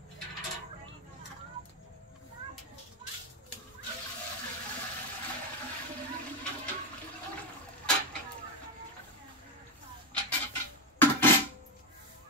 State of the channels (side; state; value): both; normal; correlation 0.11